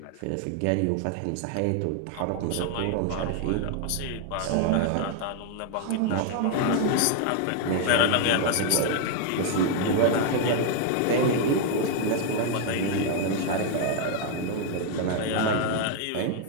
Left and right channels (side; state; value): both; different; correlation 0.00